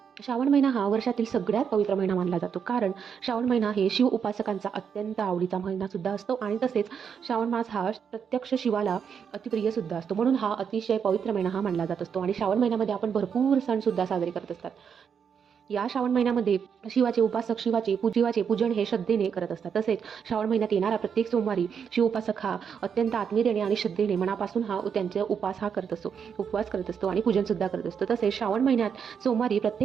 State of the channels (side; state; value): left; quieter; 7.1 dB